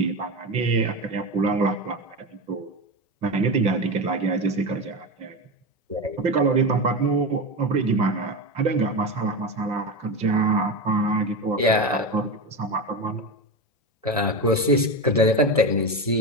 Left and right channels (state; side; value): normal; both; correlation 0.19